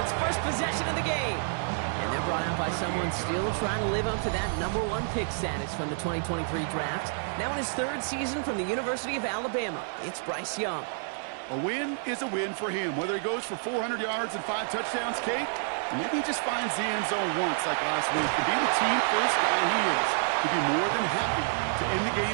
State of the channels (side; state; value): left; silent; 59 dB below the other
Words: first possession of the game. And they're brought out by someone still trying to live up to that #1 pick status from the 2023 draft. Now in his third season from the University of Alabama, it's Bryce Young. A win is a win for him, whether he goes for 400 yards and 5 touchdowns, Kate, or maybe he just finds the end zone once like last week. To be the team first guy he is, to be more than happy to end the